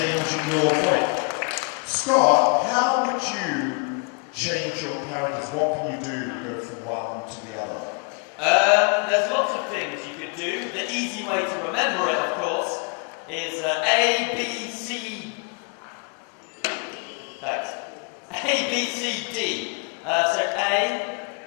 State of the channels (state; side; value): quieter; right; 37.5 dB